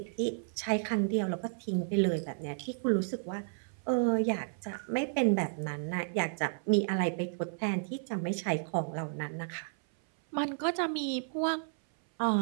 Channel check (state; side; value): silent; left; 56 dB below the other